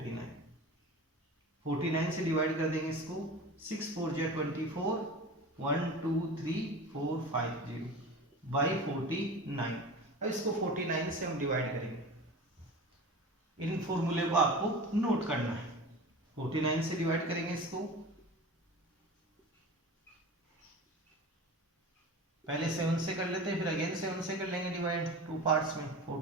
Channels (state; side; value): normal; both; correlation 0.34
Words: 49 से डिवाइड कर देंगे इसको, 6 4 जा 24, 1 2 3 4 5 0, बाई 49। अब इसको 49 से हम डिवाइड करेंगे। इन फॉर्मूले को आपको नोट करना है। 49 से डिवाइड करेंगे इसको, पहले 7 से कर लेते हैं, फिर अगेन 7 से कर लेंगे डिवाइड, टू पार्ट्स में।